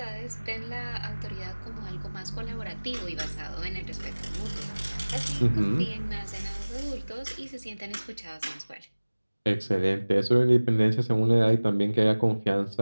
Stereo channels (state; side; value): inverted; both; correlation -1.00